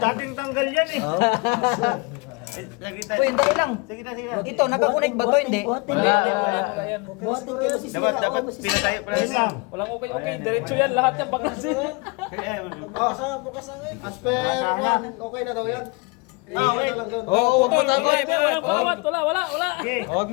Dating tanggal yan eh. Oh. Lagi tayo. Uy, dali lang. Sige na, sige na. Ito, nakakunik ba to? Hindi. Wala. Buhatin kayo si Dapat pinatayo pala yun lang. Walang okay. Diretso yan. Lahat yan baklas. Oh, saan bukas ang Asper, okay na daw yan. Okay lang doon. Oh, putol. Wala. Okay. Huwag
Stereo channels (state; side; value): quieter; right; 28.0 dB